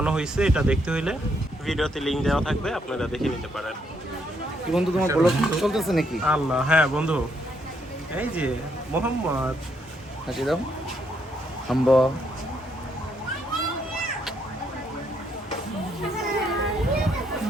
হয়েছে এটা দেখতে হইলে ভিডিওতে লিংক দেওয়া থাকবে, আপনারা দেখে নিতে পারেন। কি বন্ধু তোমার ব্লগ চলতেছে নাকি? আল্লাহ, হ্যাঁ বন্ধু, এই যে মোহাম্মদ, হাসি দাও হাম্ব।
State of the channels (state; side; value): normal; both; correlation 0.74